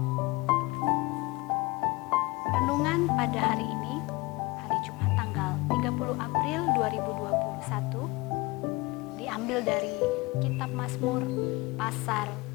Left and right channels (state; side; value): quieter; right; 23.4 dB